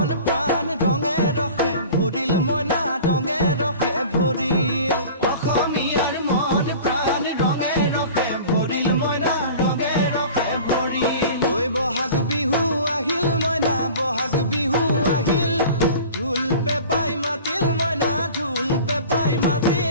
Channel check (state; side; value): inverted; both; correlation -0.40